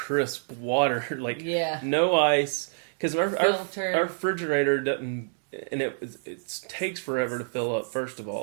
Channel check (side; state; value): left; silent; digital silence